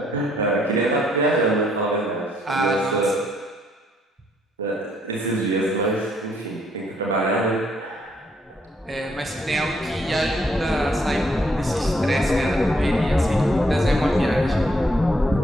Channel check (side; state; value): both; normal; correlation 0.71